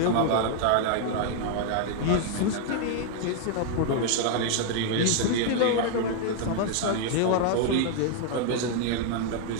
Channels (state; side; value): different; both; correlation 0.00